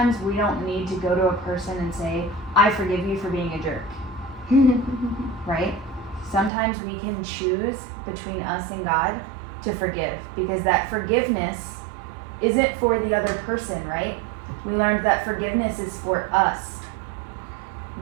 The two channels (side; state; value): left; drops out; at 6.5 s